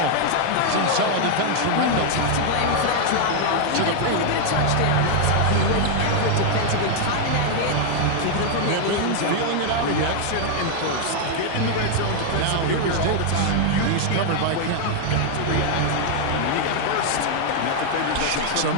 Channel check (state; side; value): different; both; correlation 0.00